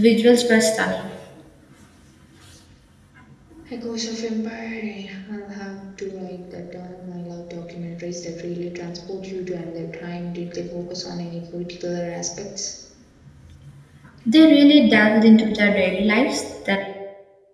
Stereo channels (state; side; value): identical; both; correlation 1.00